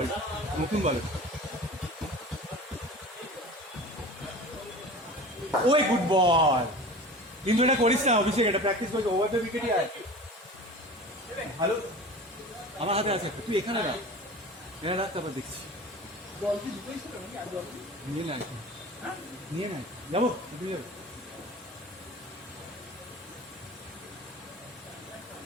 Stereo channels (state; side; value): normal; both; correlation 0.37